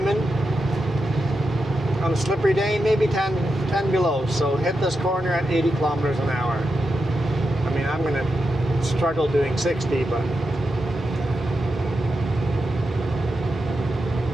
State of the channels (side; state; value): both; normal; correlation 0.87